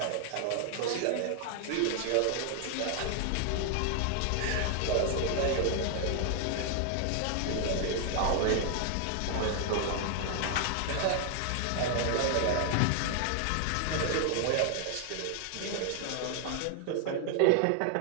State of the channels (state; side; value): different; both; correlation 0.00